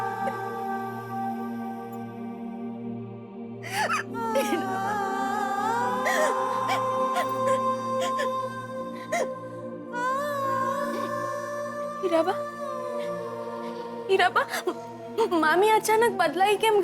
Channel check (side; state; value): both; identical; correlation 1.00